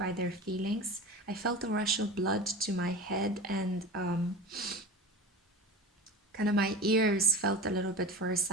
their feelings. I felt a rush of blood to my head, and kind of my ears felt a little bit for a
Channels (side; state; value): both; normal; correlation 0.32